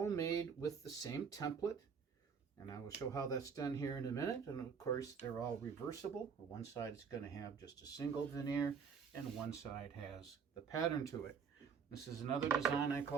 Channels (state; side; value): quieter; left; 6.3 dB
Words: made with the same template, and I will show how that's done here in a minute. And of course, they're all reversible. One side is going to have just a single veneer, and one side has the pattern to it. This is another design I